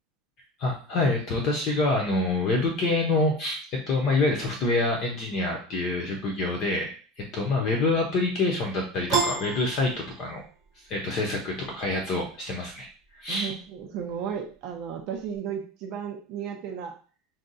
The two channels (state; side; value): normal; both; correlation 0.32